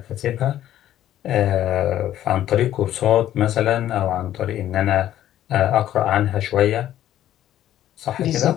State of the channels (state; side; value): quieter; right; 12.3 dB